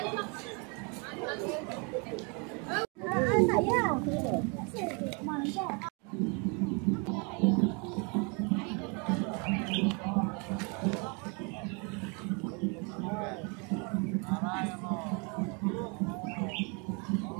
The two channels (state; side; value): quieter; left; 33.3 dB